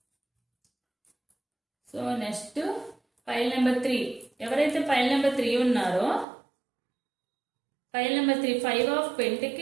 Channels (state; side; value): drops out; left; at 6.2 s